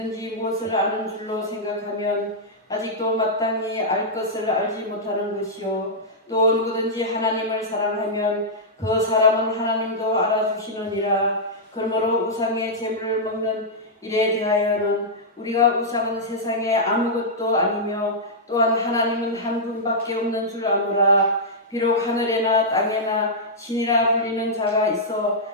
무엇을 아는 줄로 생각하면 아직도 마땅히 알 것을 알지 못하는 것이요 또 누구든지 하나님을 사랑하면 그 사람은 하나님도 알아주시느니라. 그러므로 우상의 제물을 먹는 일에 대하여는 우리가 우상은 세상에 아무것도 아니며 또한 하나님은 한 분밖에 없는 줄 아노라. 비록 하늘에나 땅에나 신이라 불리는 자가 있어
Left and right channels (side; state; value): both; normal; correlation -0.09